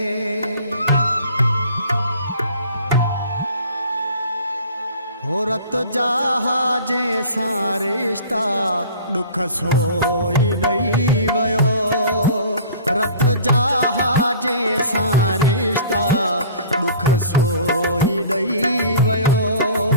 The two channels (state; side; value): inverted; both; correlation -0.45